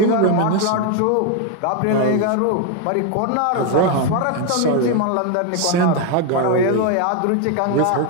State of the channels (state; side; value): different; both; correlation 0.01